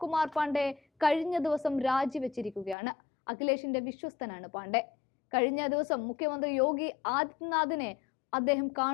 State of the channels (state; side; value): drops out; right; at 2.8 s